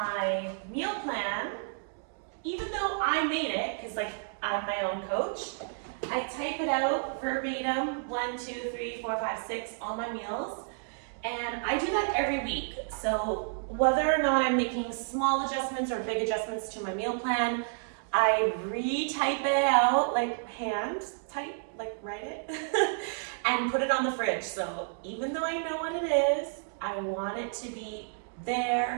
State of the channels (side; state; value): left; silent; digital silence